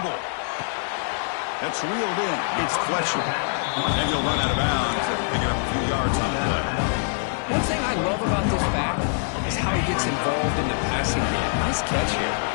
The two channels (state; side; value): silent; right; 62 dB below the other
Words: That's reeled in. It's Fletcher. And he'll run out of bounds and pick up a few yards on the play. One thing I love about this back is how he gets involved in the passing game. Nice catch here.